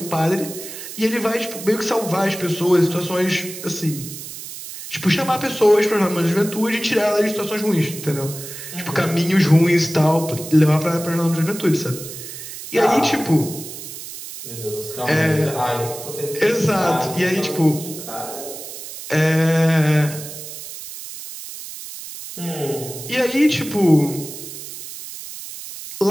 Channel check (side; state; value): right; noise; hiss, 11 dB below the sound